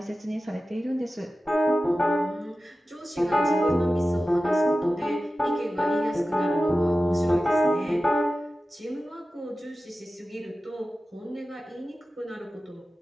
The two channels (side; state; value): both; normal; correlation 0.95